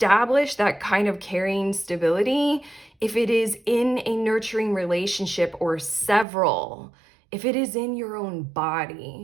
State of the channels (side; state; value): left; drops out; at 6.2 s